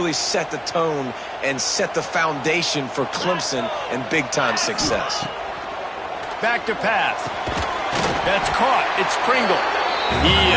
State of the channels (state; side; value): identical; both; correlation 1.00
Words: set the tone and set the foundation for Clemson and big-time success. Back to pass. That's caught. It's Pringle. He